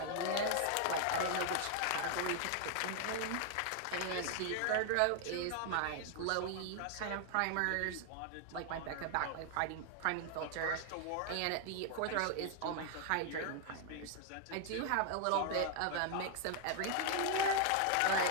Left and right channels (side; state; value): both; different; correlation 0.00